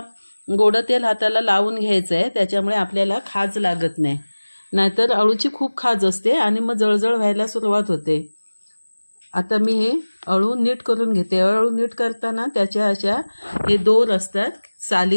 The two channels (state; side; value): inverted; both; correlation -1.00